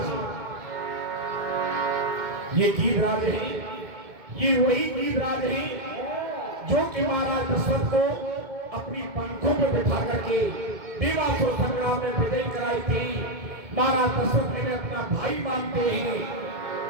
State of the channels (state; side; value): late; left; 2.2 ms